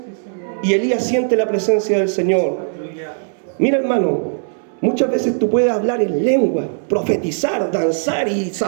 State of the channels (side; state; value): left; silent; 65 dB below the other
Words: y Elías siente la presencia del Señor. Mira, hermano, muchas veces tú puedes hablar en lengua, profetizar, danzar y